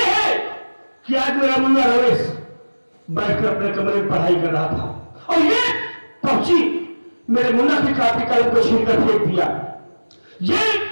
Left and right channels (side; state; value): both; inverted; correlation -1.00